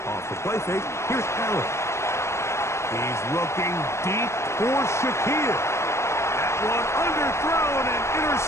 Off the play fake, here's Allen. He's looking deep for Shakir. That one underthrown and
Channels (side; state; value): right; late; 0.13 ms